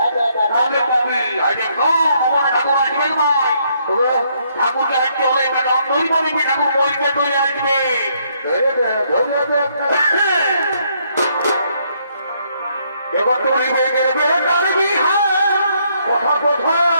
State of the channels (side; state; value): both; inverted; correlation -0.71